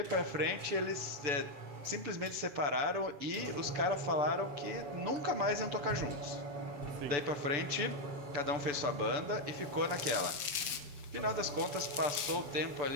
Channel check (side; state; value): left; late; 6.8 ms